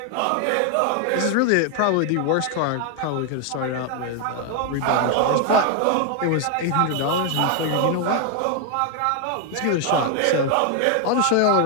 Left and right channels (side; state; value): both; different; correlation 0.00